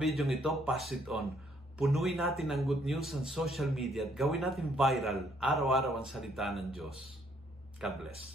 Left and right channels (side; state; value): both; normal; correlation 0.67